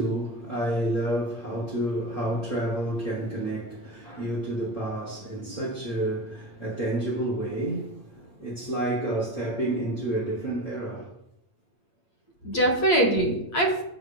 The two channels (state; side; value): late; right; 8.6 ms